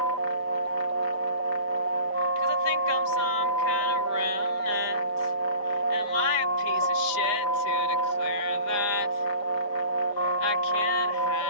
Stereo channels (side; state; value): right; late; 4.8 ms